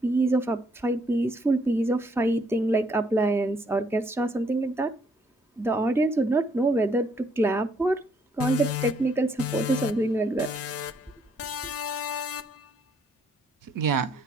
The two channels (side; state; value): both; normal; correlation 0.69